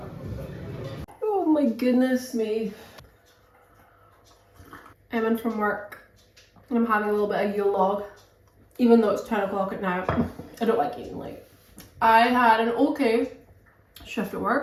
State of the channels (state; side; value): identical; both; correlation 1.00